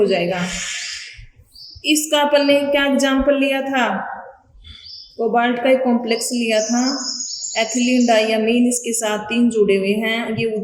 जाएगा। इसका अपन ने क्या एग्जाम्पल लिया था? कोबाल्ट का एक कॉम्प्लेक्स लिया था, एथिलीन डाइयामीन, इसके साथ 3 जुड़े हुए हैं। ये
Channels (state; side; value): identical; both; correlation 1.00